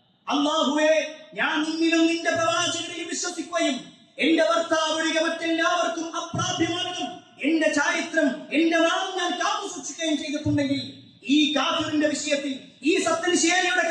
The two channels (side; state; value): both; identical; correlation 1.00